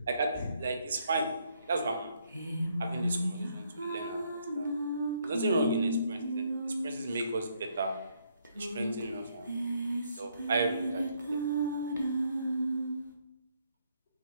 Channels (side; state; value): both; inverted; correlation -0.72